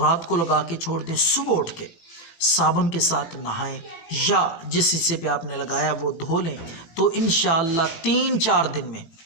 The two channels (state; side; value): late; right; 18 ms